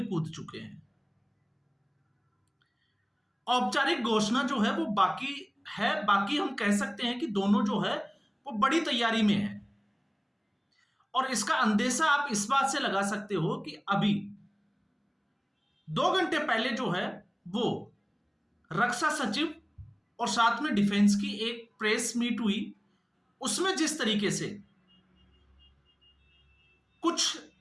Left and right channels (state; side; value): identical; both; correlation 1.00